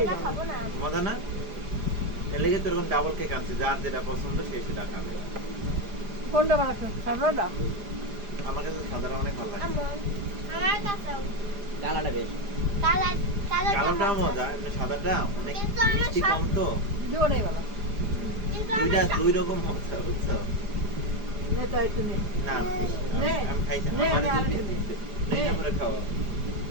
খাবো না মজা না? এর লেগে তো এরকম ডাবল কেক আনছে, যার যেটা পছন্দ সে সেটা খাবে। কোনটা বানাচ্ছো? সাদাটা? আমার কাছে সাদাটা অনেক ভালো লাগে। আমার কাছেও কালারটা বেশ। কালার কালোটাও মজা, এমনি সাদাটা অনেক কিন্তু আমার মিষ্টি কম তো। জোরে বাবা। কিন্তু দুইটা আমার দুই রকম মজা বুঝছো? নে তো একটু নে। না নে। আমি খাইছি, নে, আমার নে, দুই আরেকটু পিস নে। দিচ্ছে। নে করে খাও।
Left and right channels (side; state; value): left; late; 4.9 ms